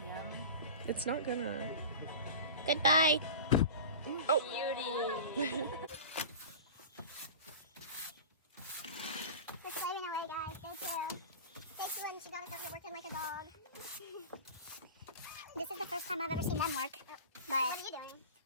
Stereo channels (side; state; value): both; inverted; correlation -0.33